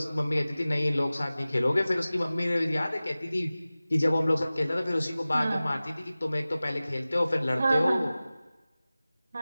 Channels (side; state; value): both; inverted; correlation -0.97